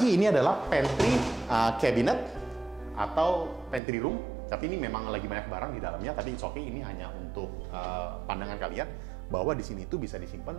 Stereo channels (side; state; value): left; drops out; at 3.8 s